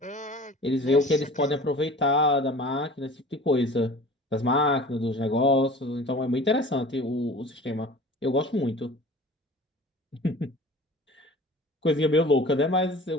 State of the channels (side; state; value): both; normal; correlation 0.42